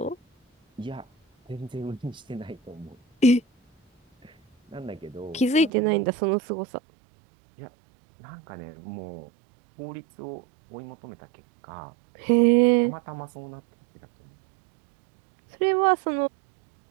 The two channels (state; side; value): drops out; left; at 5.7 s